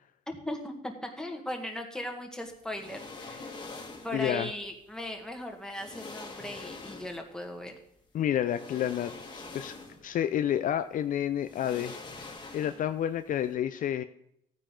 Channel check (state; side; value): quieter; right; 7.5 dB